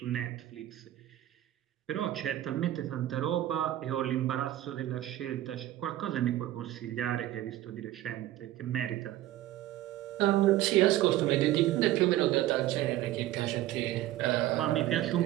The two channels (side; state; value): left; quieter; 14.3 dB